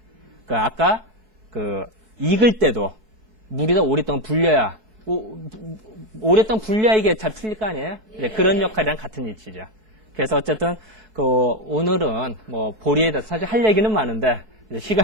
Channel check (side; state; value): left; late; 4.6 ms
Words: 아까 익을 때도 물이 더 오랫동안 불려야 오랫동안 불려야 이게 잘 풀릴 거 아니에요? 네, 그런 역할이랑 같은 위치죠. 그래서 어쨌든 오늘은 보리에 대해서 사실 할 얘기는 많은데